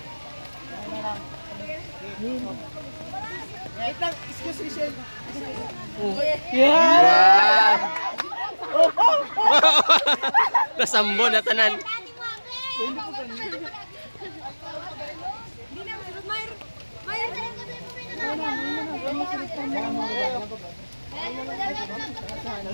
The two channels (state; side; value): inverted; both; correlation -1.00